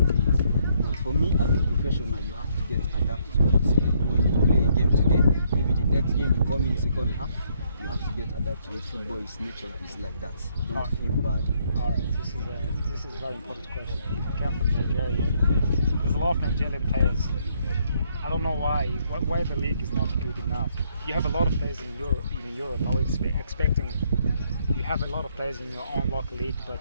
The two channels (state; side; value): inverted; both; correlation -0.70